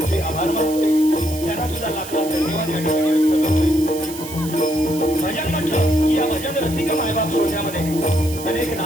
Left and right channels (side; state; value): right; noise; hiss, 12 dB below the sound